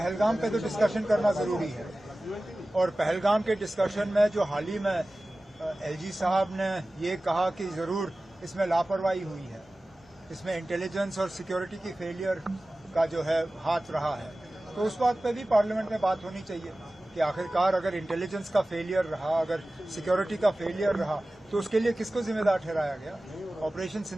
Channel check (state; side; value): normal; both; correlation 0.97